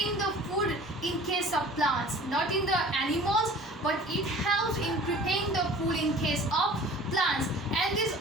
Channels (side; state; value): both; normal; correlation 0.46